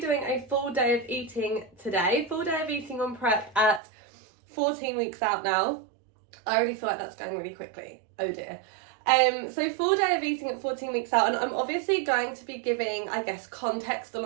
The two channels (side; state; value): left; drops out; at 3.8 s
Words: doing a full day of eating today. Full day of eating on prep at 14 weeks out now. I already feel like that's going really quickly. Oh dear. So full day of eating at 14 weeks out, and I'm obviously going to be giving, I guess, context